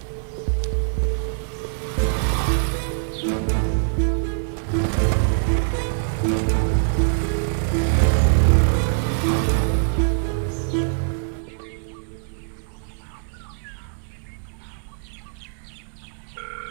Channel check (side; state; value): left; silent; digital silence